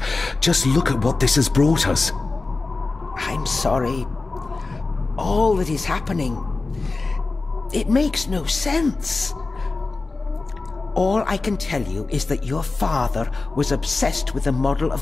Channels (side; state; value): right; quieter; 3.7 dB